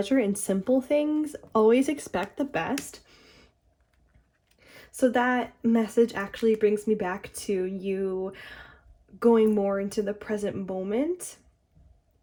in simple things. Always expect the best. So that message actually brings me back to you going more into the present moment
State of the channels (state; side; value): identical; both; correlation 1.00